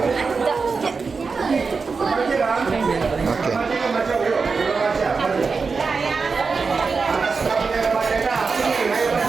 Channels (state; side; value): quieter; left; 4.7 dB